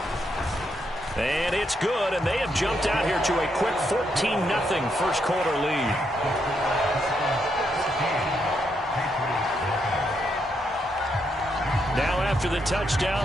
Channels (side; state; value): both; normal; correlation 0.78